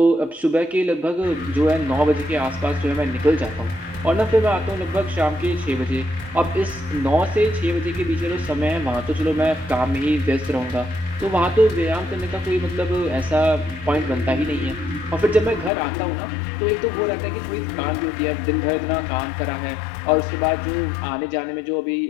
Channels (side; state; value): right; drops out; at 15.7 s